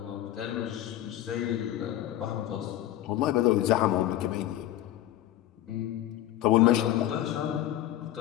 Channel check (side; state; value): right; quieter; 13.1 dB